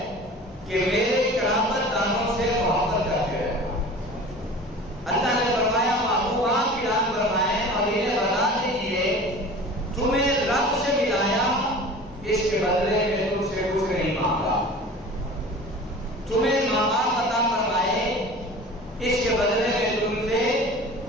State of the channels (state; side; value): normal; both; correlation 0.40